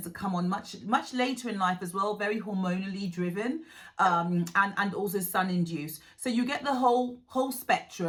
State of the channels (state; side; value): identical; both; correlation 1.00